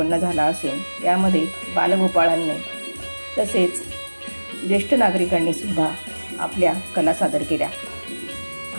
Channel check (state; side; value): inverted; both; correlation -1.00